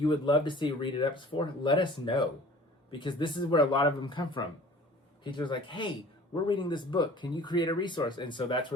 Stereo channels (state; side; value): normal; both; correlation 0.46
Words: would love to see Read It Ups for, let us know, because this is where a lot of them come from. Teachers are like, hey, we're reading this book. Can you create a resource? And so that's